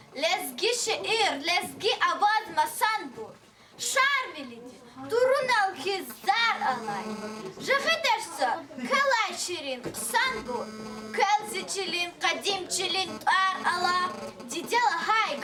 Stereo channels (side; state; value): both; identical; correlation 1.00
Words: lezgi şiir, lezgi avaz masanbur, şar bilidi, durun al ki zar alay, jıgıdersa kalay şirin sanbur, Kəlziçilin, qadimçilin tar ala, didela hay